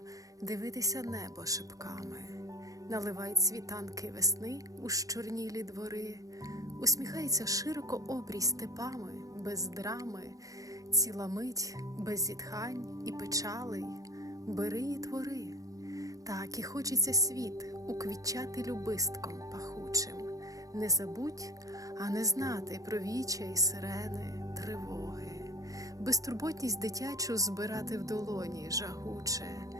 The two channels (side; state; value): left; late; 0.17 ms